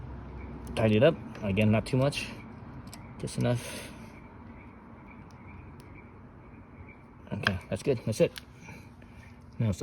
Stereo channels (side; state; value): both; identical; correlation 1.00